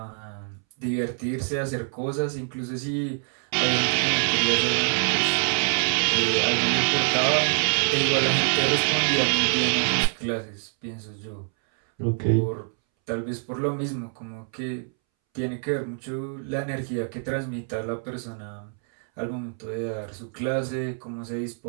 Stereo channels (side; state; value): left; silent; 61 dB below the other